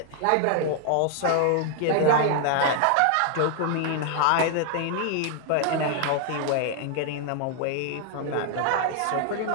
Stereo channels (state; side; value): different; both; correlation 0.00